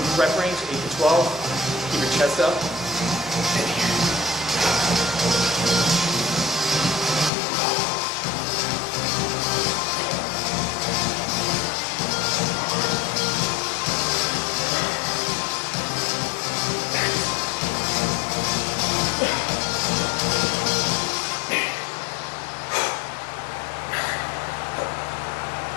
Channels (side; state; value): right; drops out; at 7.3 s